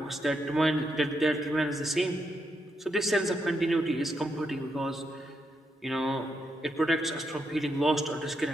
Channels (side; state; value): both; normal; correlation 0.81